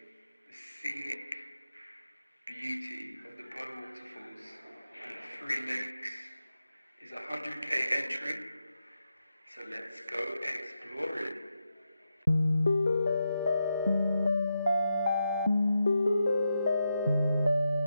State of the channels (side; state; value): both; inverted; correlation -0.86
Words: the scenic beauty of the waterfalls and the 3 lakes. It's a 100k entry, so let's go exploring.